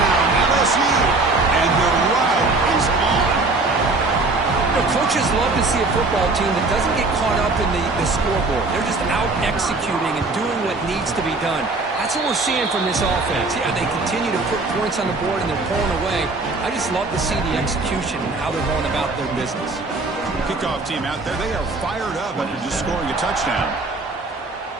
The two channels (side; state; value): left; quieter; 3.4 dB